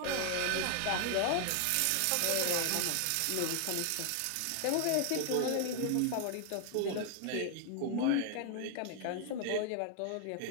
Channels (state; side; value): different; both; correlation 0.00